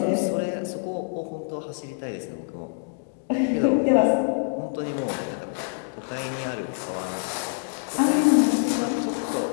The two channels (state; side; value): silent; right; digital silence